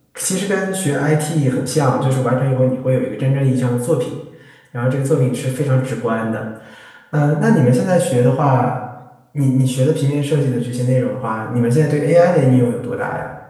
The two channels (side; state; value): both; identical; correlation 1.00